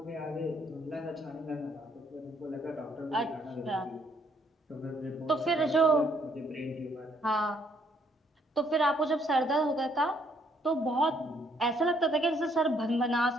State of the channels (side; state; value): both; normal; correlation 0.68